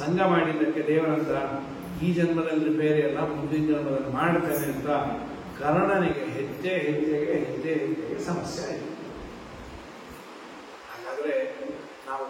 ಮಾಡಿದ್ದಕ್ಕೆ ದೇವರಂತ ಈ ಜನ್ಮದಲ್ಲಿ ಬೇರೆ ಅಲ್ಲ, ಮುಂದಿನ ಜನ್ಮದಲ್ಲಿ ಮಾಡ್ತೇನೆ ಅಂತ ಕರ್ಣನಿಗೆ ಹೆಜ್ಜೆ ಹೆಜ್ಜೆಗೆ ಸಮಸ್ಯೆ ಆಯಿತು. ಹಾಗಾದ್ರೆ ನಾವು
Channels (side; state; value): both; identical; correlation 1.00